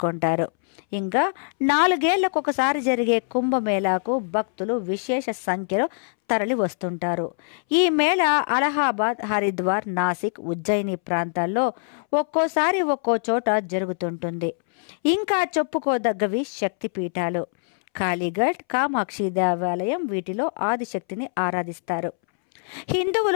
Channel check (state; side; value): silent; right; 63 dB below the other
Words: ఇంకా 4 ఏళ్లకొకసారి జరిగే కుంభమేళాకు భక్తులు విశేష సంఖ్యలో తరలి వస్తుంటారు. ఈ మేళ అలహాబాద్, హరిద్వార్, నాసిక్, ఉజ్జయిని ప్రాంతాల్లో ఒక్కోసారి ఒక్కో చోట జరుగుతుంటుంది. ఇంకా చెప్పుకోదగ్గవి శక్తిపీఠాలు. కాళీఘట్, కామాక్షి దేవాలయం వీటిలో ఆదిశక్తిని ఆరాధిస్తారు.